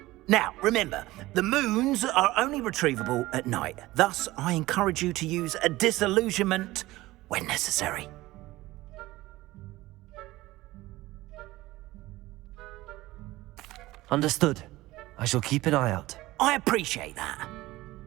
Now, remember, the moons are only retrievable at night. Thus, I encourage you to use a disillusionment when necessary. Understood. I shall keep an eye out. I appreciate that.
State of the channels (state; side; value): quieter; left; 18.1 dB